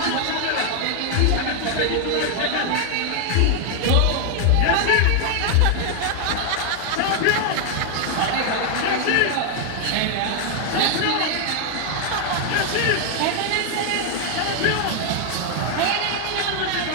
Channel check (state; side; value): different; both; correlation 0.00